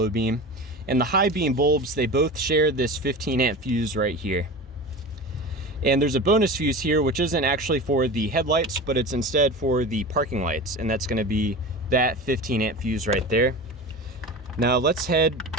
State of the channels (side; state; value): both; normal; correlation 0.31